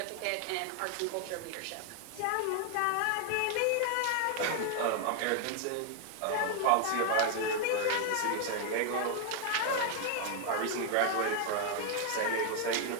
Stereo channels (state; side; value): different; both; correlation 0.00